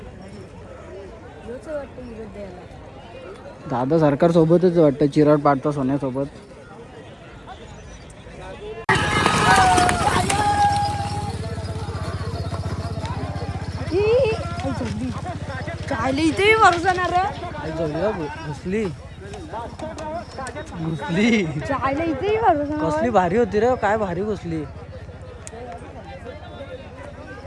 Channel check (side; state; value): both; identical; correlation 1.00